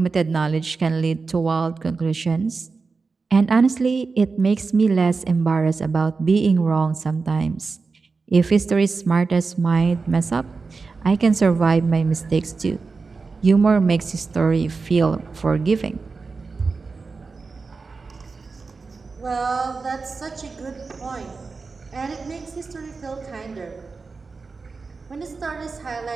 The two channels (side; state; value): left; quieter; 4.4 dB